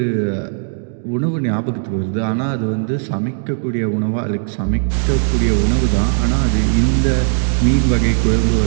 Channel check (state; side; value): silent; left; digital silence